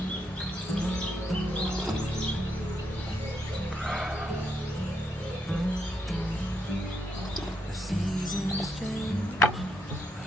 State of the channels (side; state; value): both; normal; correlation 0.79